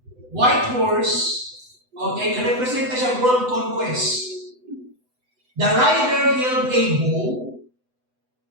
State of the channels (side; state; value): left; late; 8.0 ms